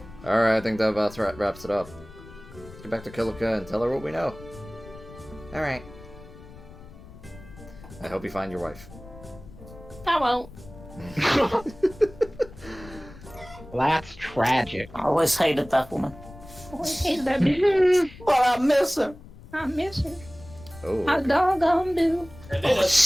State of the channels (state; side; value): noise; left; rumble, 18 dB below the sound